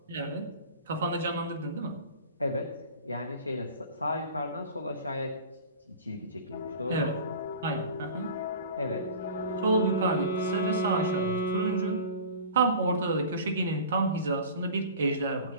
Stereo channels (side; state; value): both; inverted; correlation -0.38